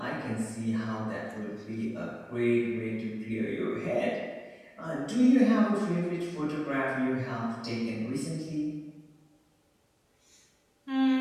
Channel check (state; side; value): identical; both; correlation 1.00